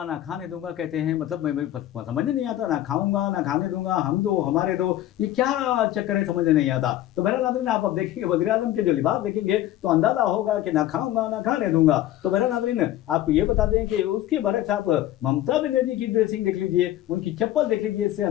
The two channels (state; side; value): quieter; right; 13.6 dB